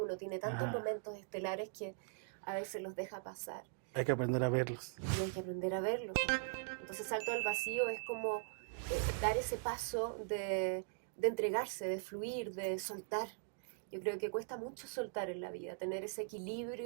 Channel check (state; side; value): silent; left; digital silence